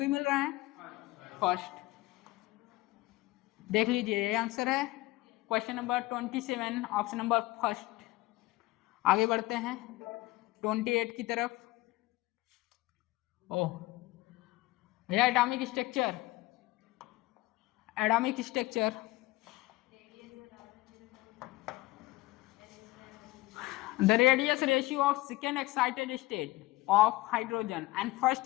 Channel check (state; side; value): quieter; right; 19.4 dB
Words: मिल रहा है फर्स्ट, देख लीजिए ये आंसर है question number 27 option number first. आगे बढ़ते हैं 28 की तरफ। ओह भैया atomic structure, atomic structure the radius ratio of second excited state of hydrogen and first